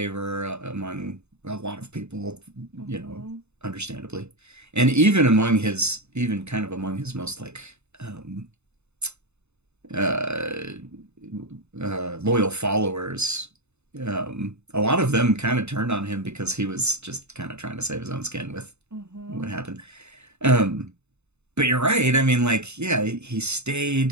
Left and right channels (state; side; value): late; left; 0.81 ms